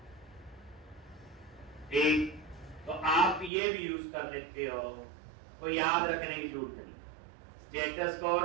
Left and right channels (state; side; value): drops out; left; at 3.5 s